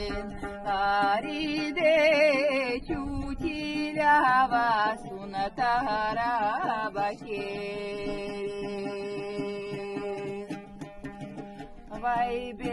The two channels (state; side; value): identical; both; correlation 1.00